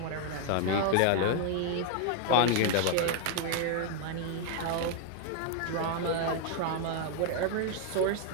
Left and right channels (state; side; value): different; both; correlation 0.00